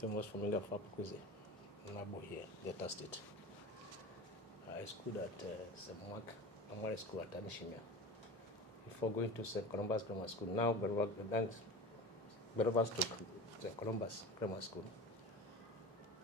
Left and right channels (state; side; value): normal; both; correlation 0.31